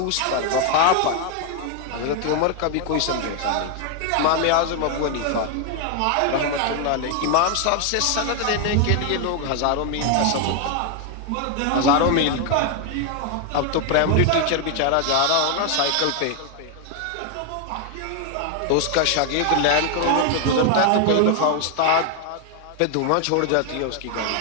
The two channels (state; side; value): different; both; correlation 0.01